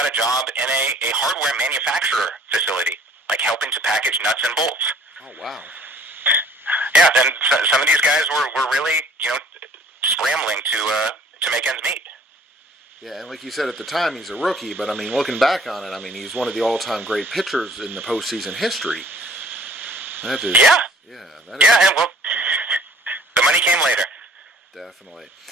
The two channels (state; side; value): normal; both; correlation 0.54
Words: a job in a hardware manufacturer facility, like helping to package nuts and bolts. Oh, wow. Yeah, and some of these guys were really, scrambling to make ends meet. Yeah, and like you said at the time, he's a rookie, but I mean, looking back on it, I mean, he's one of the all-time great pitchers in the postseason history. That is, yeah, that is, yeah. Well, the money came later. Definitely.